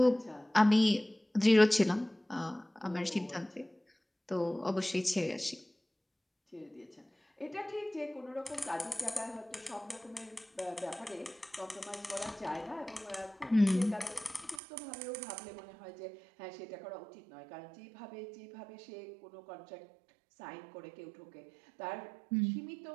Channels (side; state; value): left; drops out; at 14.6 s